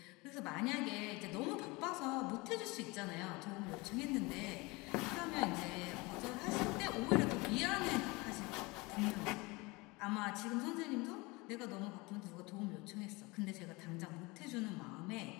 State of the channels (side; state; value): right; quieter; 24.6 dB